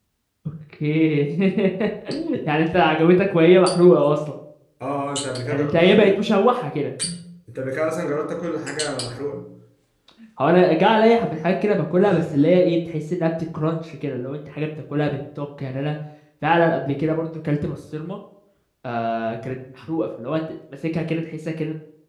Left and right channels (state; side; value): identical; both; correlation 1.00